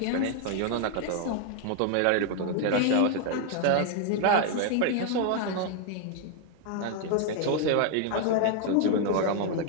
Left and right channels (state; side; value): different; both; correlation 0.00